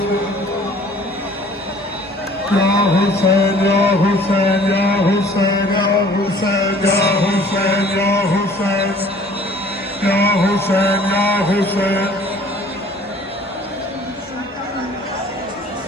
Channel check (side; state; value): both; normal; correlation 0.52